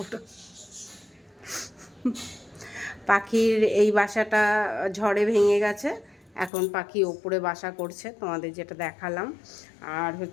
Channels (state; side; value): drops out; right; at 6.5 s